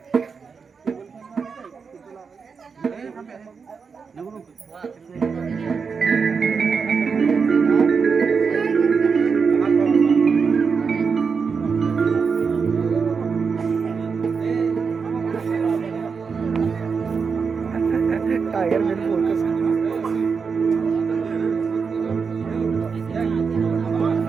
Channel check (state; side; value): quieter; left; 5.5 dB